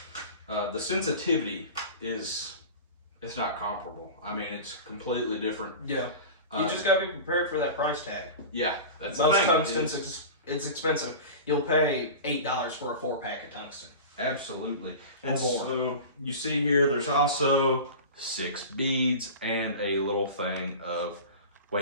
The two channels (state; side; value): inverted; both; correlation -0.33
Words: the sensitivity it's not comparable. I mean, it's completely different. Yeah. You just gotta be prepared for that price tag. Yeah, that's the thing. Tungsten, it's expensive. You'll pay $8 for a 4-pack of tungsten. Absolutely. And so you see here, there's also 6 beads and a little thing of